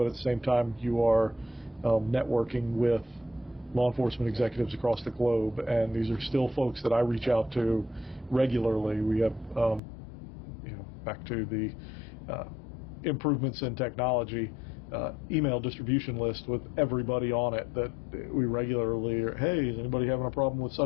at the same time you are networking with law enforcement executives across the globe, and these are still folks that I reach out to regularly. We have back to the improvements in technology, email distribution list with everybody on it that we regularly are, hey, is anybody having a problem with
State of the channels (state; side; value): drops out; right; at 9.8 s